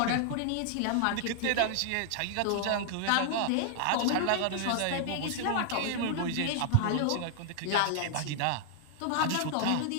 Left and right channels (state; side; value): different; both; correlation 0.00